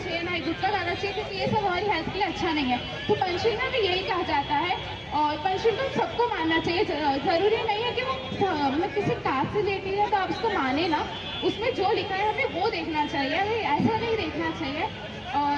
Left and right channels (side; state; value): both; identical; correlation 1.00